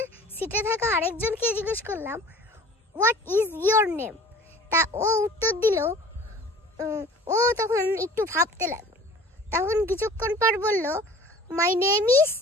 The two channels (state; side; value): normal; both; correlation 0.46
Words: সিটে থাকা আরেকজনকে জিজ্ঞেস করলাম হোয়াট ইজ ইয়োর নেম। তা ও উত্তর দিল, ও তখন একটু ভাবতে লাগলো। তখন কিছুক্ষণ পর বলল my name is